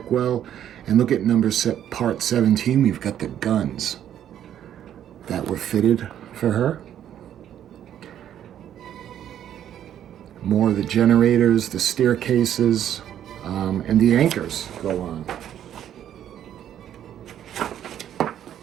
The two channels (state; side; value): quieter; left; 10.5 dB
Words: well, and look at part 17, we've got the guns that were fitted for her. More of the generators, the staircases, and the anchors go on.